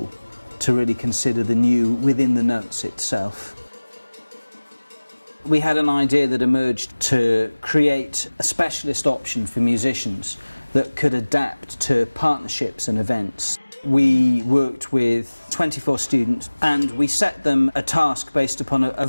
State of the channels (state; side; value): inverted; both; correlation -1.00